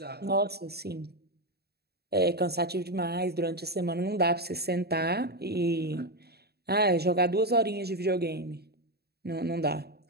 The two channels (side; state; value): left; late; 0.47 ms